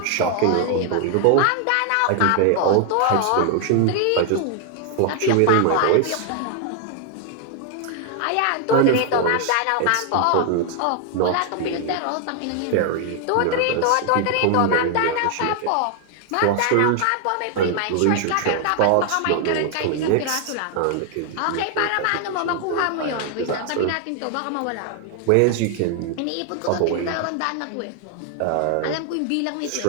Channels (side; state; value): both; different; correlation 0.00